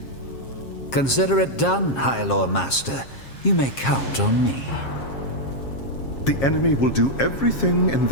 Consider it done, High Lord Master. You may count on me. The enemy will do everything in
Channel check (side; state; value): right; late; 7.4 ms